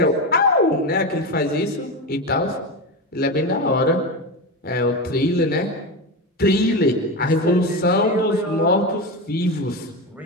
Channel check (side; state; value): both; normal; correlation 0.18